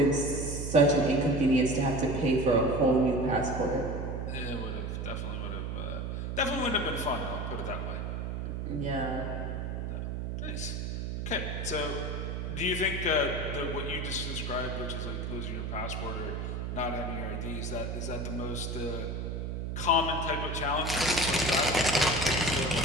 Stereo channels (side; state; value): right; noise; hum, 3 dB below the sound